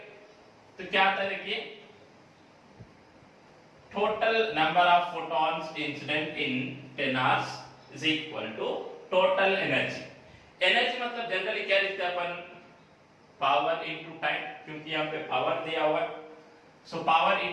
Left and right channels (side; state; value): both; identical; correlation 1.00